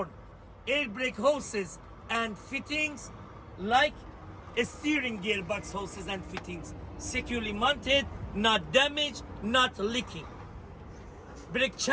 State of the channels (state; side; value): identical; both; correlation 1.00